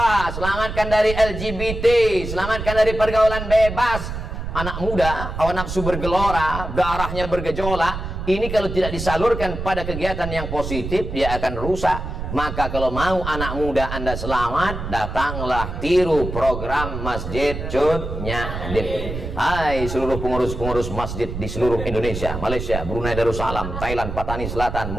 selamatkan dari LGBT, selamatkan dari pergaulan bebas. Anak muda, hawa nafsu bergelora, darahnya bergejolak. Ini kalau tidak disalurkan pada kegiatan yang positif, dia akan rusak. Maka kalau mau anak muda Anda selamat, datanglah tiru program Masjid Cut Nyadin. Hai seluruh pengurus-pengurus masjid di seluruh Indonesia, Malaysia, Brunei Darussalam, Thailand, Patani Selatan,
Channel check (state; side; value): noise; right; rumble, 6 dB below the sound